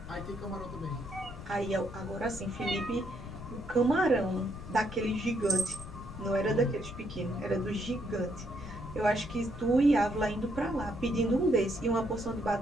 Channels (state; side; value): noise; left; rumble, 12 dB below the sound